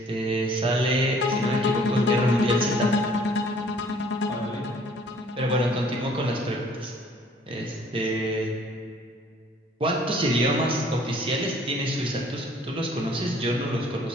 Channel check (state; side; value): normal; both; correlation 0.57